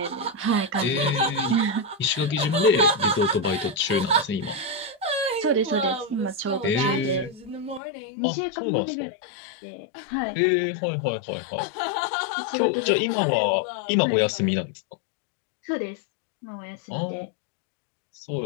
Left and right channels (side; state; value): right; drops out; at 7.8 s